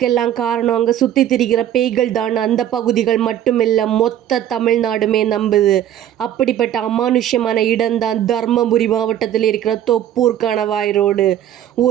காரணம் அங்கே சுற்றி திரிகிற பேய்கள் தான். அந்த பகுதிகள் மட்டுமில்லை, மொத்த தமிழ்நாடுமே நம்புது. அப்படிப்பட்ட அமானுஷ்யமான இடம்தான் தர்மபுரி மாவட்டத்தில் இருக்கிற தொப்பூர் கணவாய் ரோடு.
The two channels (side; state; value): left; quieter; 11.1 dB